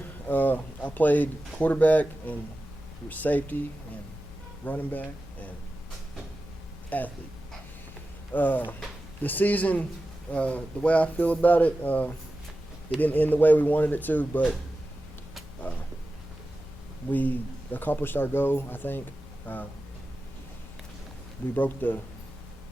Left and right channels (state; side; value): normal; both; correlation 0.93